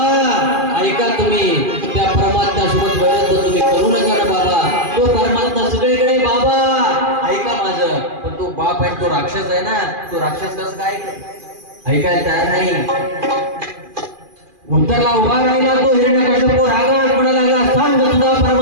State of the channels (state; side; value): late; left; 2.4 ms